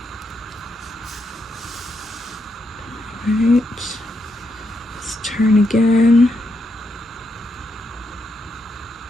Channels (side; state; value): both; normal; correlation 0.81